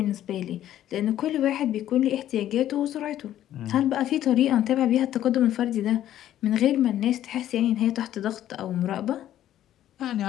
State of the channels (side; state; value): right; quieter; 12.1 dB